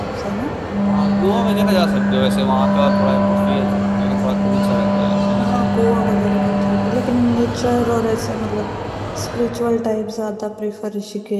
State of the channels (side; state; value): both; identical; correlation 1.00